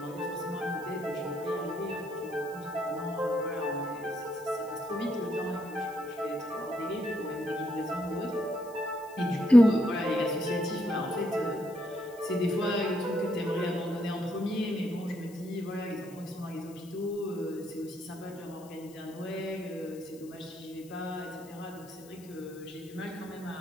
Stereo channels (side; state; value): left; noise; hiss, 22 dB below the sound